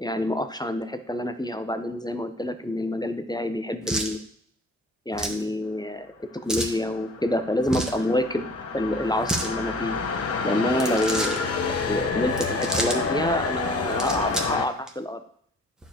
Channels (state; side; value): normal; both; correlation 0.50